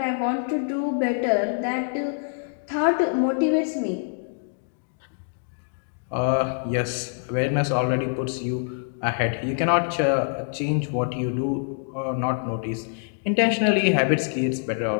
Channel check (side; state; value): right; silent; digital silence